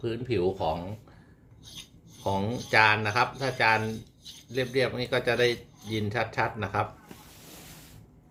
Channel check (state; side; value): identical; both; correlation 1.00